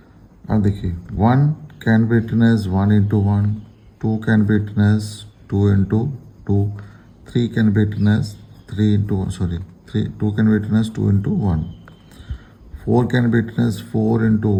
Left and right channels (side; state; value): both; identical; correlation 1.00